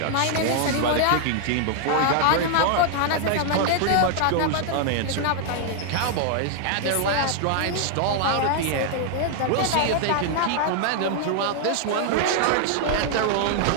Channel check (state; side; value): different; both; correlation 0.00